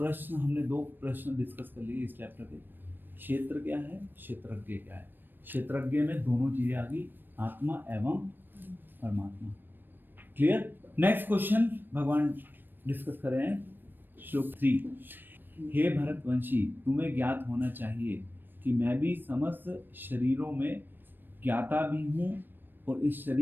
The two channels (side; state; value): left; late; 0.094 ms